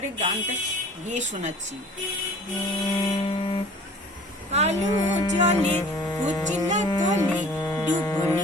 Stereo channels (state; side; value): normal; both; correlation 0.48